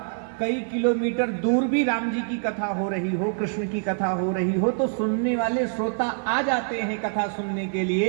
कई किलोमीटर दूर भी राम जी की कथा हो रही हो, कृष्ण की कथा हो रही हो, तो सुनने वाले श्रोता आ जाते हैं कथा सुनने के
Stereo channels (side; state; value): left; silent; 62 dB below the other